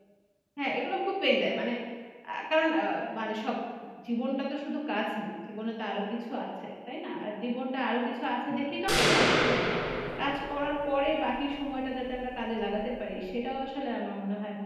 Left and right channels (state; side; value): identical; both; correlation 1.00